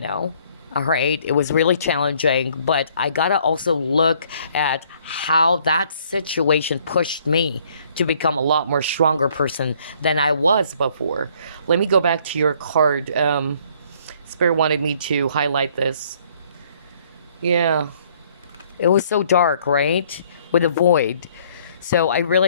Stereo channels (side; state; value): both; inverted; correlation -0.62